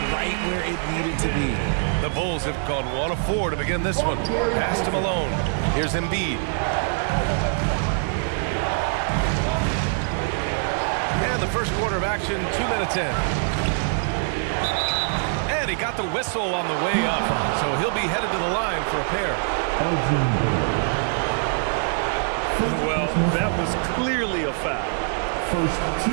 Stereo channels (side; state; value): left; silent; digital silence